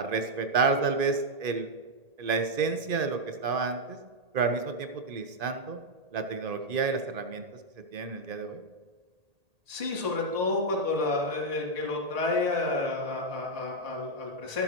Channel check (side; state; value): left; late; 1.8 ms